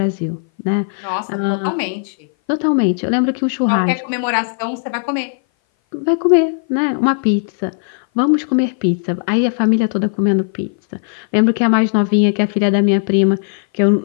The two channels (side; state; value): right; silent; 59 dB below the other